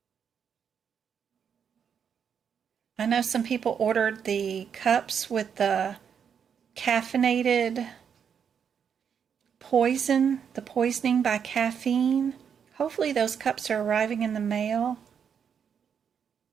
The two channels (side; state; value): left; quieter; 7.4 dB